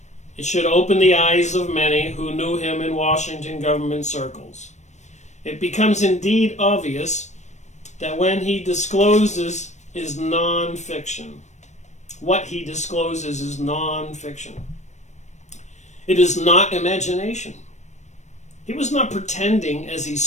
It should open the eyes of many who knew him in Washington government circles. It becomes indeed obvious that when he discloses is non-fiction. What he discloses is non-fiction. It is not imagination. He was not pretending as he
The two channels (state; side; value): late; right; 0.34 ms